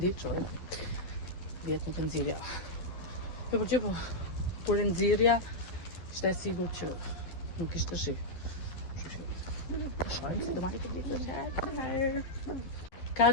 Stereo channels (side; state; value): right; late; 12 ms